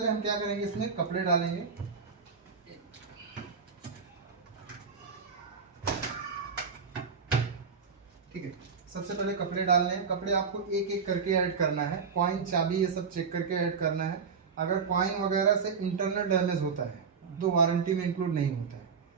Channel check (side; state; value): left; quieter; 5.7 dB